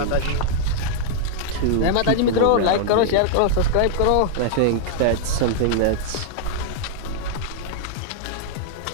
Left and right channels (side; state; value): both; different; correlation -0.01